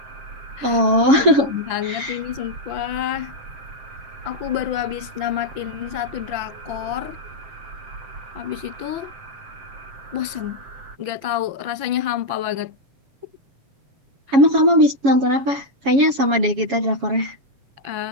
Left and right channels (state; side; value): late; left; 7.2 ms